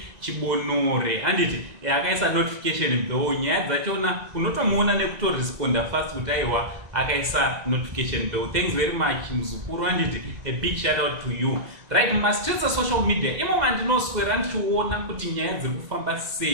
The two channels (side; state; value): left; late; 1.9 ms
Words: Chibonore handiti akaisa notification bell, nyaya dzachona unotomuona nekutoresponda fast kuti aiwa akaisa notification bell. Thanks very much muzukuru handiti, a big shout out to you. Right, mastreets social media imo mandinoswera ndichiona kuti nyaya dziri kufamba